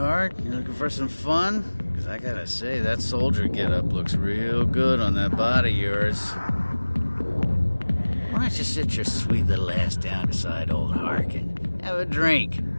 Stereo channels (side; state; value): both; inverted; correlation -1.00